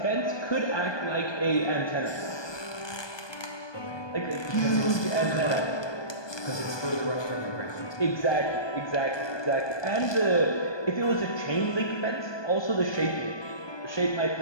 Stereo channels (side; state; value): right; late; 1.2 ms